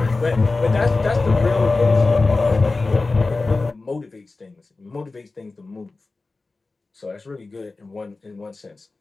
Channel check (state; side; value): quieter; right; 3.6 dB